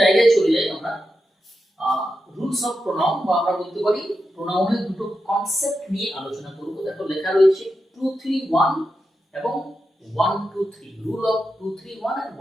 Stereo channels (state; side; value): normal; both; correlation 0.88